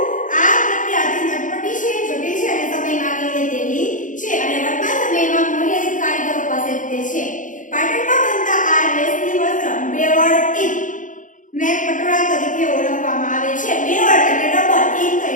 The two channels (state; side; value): late; right; 0.37 ms